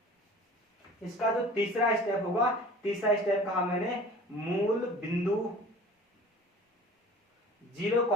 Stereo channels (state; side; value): normal; both; correlation 0.44